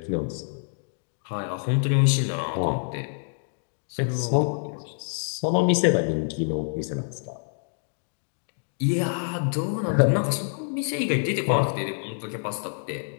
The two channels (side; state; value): right; silent; digital silence